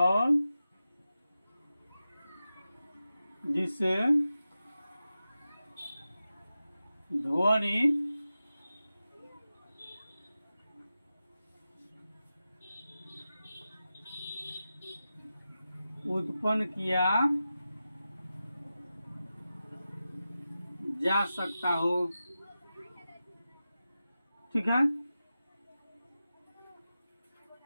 जिससे ध्वनि उत्पन्न किया जा सकता हो। ठीक है।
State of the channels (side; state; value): both; inverted; correlation -0.93